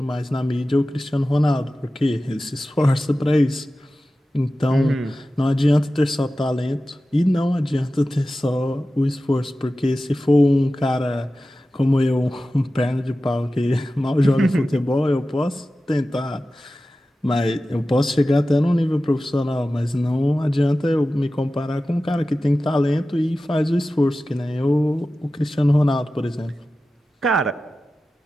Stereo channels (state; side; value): normal; both; correlation 0.95